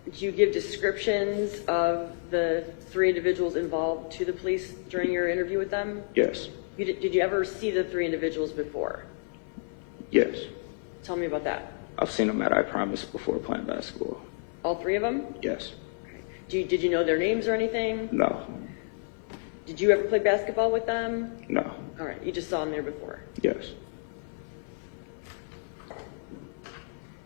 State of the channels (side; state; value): right; silent; 58 dB below the other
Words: Did you give descriptions of the 3 individuals involved to the police during your interview with them? Yes. Did you ever see the 3 individuals before? Yes. Tell me about that. I've seen them at I Promise before playing basketball. All 3 of them? Yes. Did you know their names or anything? No. Did you ever play basketball with them? No. All right, you just saw them there before. Yes.